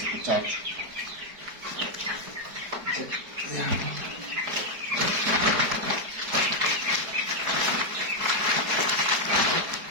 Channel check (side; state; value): left; late; 4.7 ms